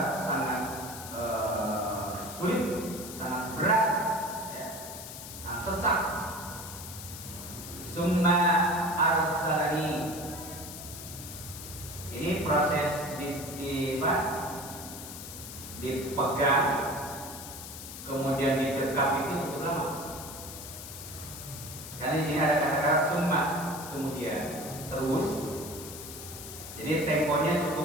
sangat sulit, sangat berat, ya, sangat sesak. Summa arsalani. Ini proses dipegang, kemudian didekap itu cukup lama. Karena di sini ada kata-kata summa, kemudian terus. Jadi temponya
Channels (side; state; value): left; noise; hiss, 11 dB below the sound